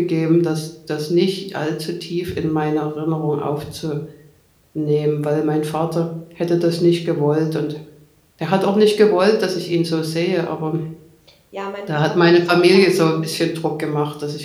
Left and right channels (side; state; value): both; identical; correlation 1.00